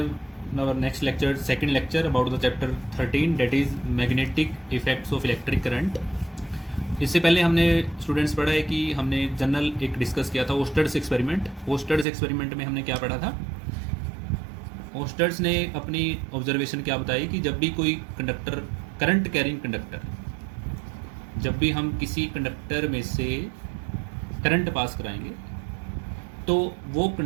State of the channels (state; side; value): drops out; left; at 12.1 s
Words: our next lecture, second lecture about the chapter 13, that is magnetic effects of electric current. इससे पहले हमने students पढ़ा है कि हमने general एक discuss किया था ओस्टर्स एक्सपेरिमेंट। ओस्टर्स एक्सपेरिमेंट में हमने क्या पढ़ा था? ओस्टर्स ने अपनी ऑब्जर्वेशन क्या बताई कि जब भी कोई कंडक्टर, करंट कैरिंग कंडक्टर, जब भी हम किसी कंडक्टर में से करंट पास कराएंगे तो वो